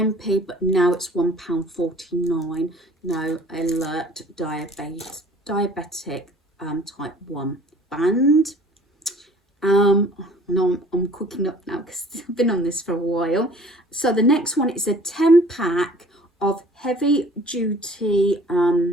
but now it's £1.49. No, alert diabetic type 1 band. No, I'm cooking up now because I've been on this for a while. So the next one is a 10 pack of heavy duty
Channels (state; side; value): normal; both; correlation 0.51